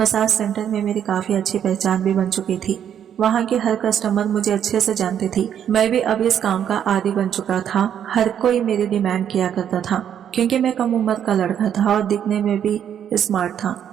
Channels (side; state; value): left; quieter; 9.2 dB